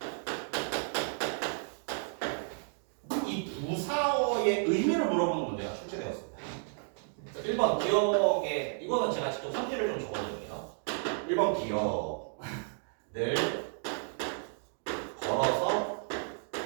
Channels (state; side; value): silent; left; 56 dB below the other